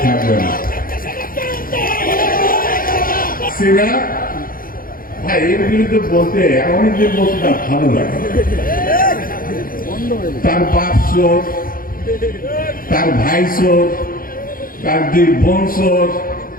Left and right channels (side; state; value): right; late; 0.41 ms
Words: থাকবে না। ভাই এর বিরুদ্ধে বলতে অনেকদিন বলতে তার ভালো লাগে। তার বাপ চোর, তার ভাই চোর, তার 2 বোন চোর,